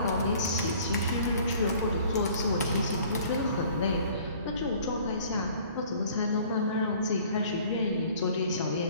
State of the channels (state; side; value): inverted; both; correlation -0.52